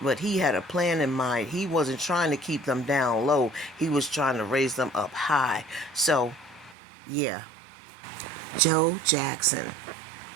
he had a plan in mind. He wasn't trying to keep them down low. He was trying to raise them up high. So, yeah. Joe Jackson,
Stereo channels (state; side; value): drops out; left; at 6.8 s